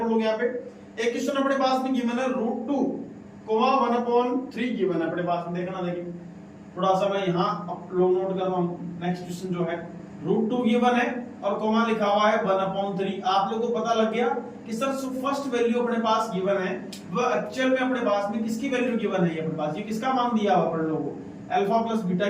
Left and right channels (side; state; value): both; identical; correlation 1.00